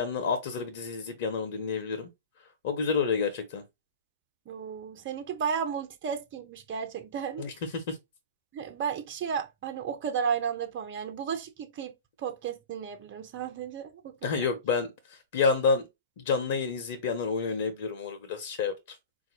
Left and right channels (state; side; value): inverted; both; correlation -0.36